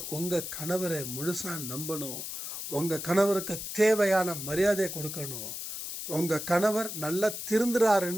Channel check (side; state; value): left; noise; hiss, 7 dB below the sound